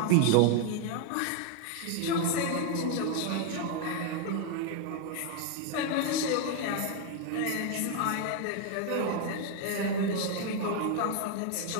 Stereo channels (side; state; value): both; different; correlation 0.01